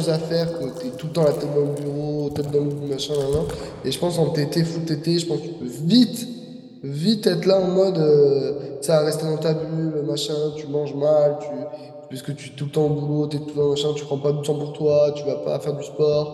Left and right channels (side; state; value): both; identical; correlation 1.00